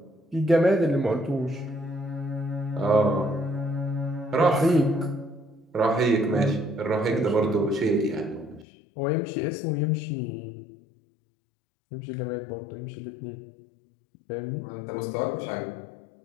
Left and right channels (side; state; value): right; drops out; at 8.7 s